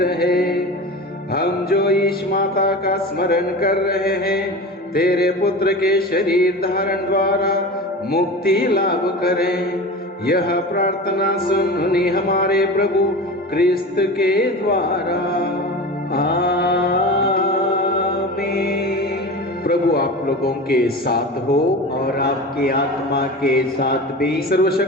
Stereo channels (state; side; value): normal; both; correlation 0.31